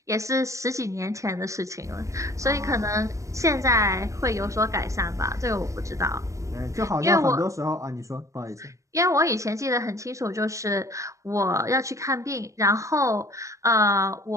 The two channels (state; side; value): late; left; 0.15 ms